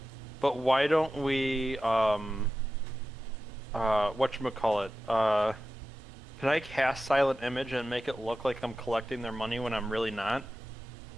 But why don't we, whatchamacallit, can I cast Silent Image and make it look like I'm collecting their money when I'm really not?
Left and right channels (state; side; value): normal; both; correlation 0.92